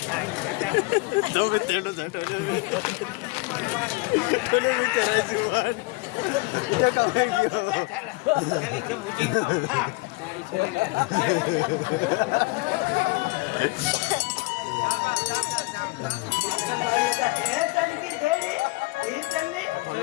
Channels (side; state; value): right; quieter; 24.7 dB